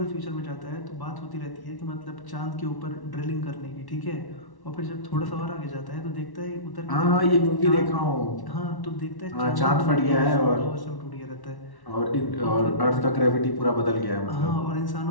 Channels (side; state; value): right; late; 1.1 ms